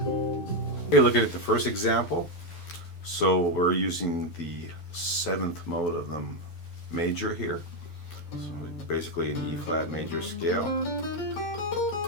Okay, looking at the first example. So we're using the 7th mode of the major here. So basically an E flat major scale.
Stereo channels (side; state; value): right; late; 12 ms